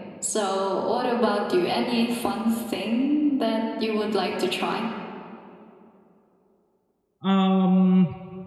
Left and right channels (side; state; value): both; identical; correlation 1.00